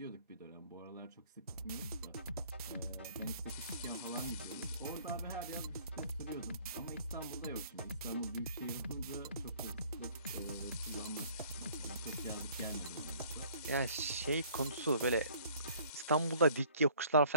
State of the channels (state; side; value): inverted; both; correlation -0.56